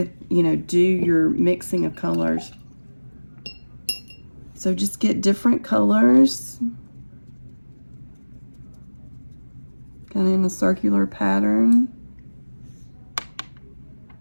your mixing of colors. So just get different colors, kind of in a circular pattern.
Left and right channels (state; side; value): inverted; both; correlation -1.00